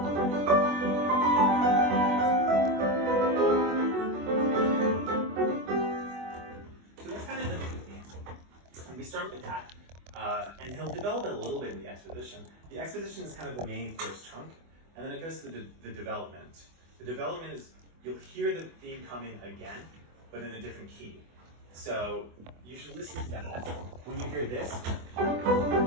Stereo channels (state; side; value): late; left; 24 ms